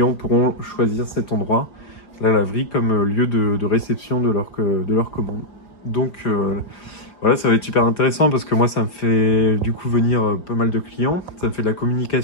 pourront choisir cet endroit, la laverie, comme lieu de réception de leur commande. Donc voilà, ça va être super intéressant parce que moi, ça me fait du coup venir pas mal de clients. Ça me fait de la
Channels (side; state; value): right; late; 4.9 ms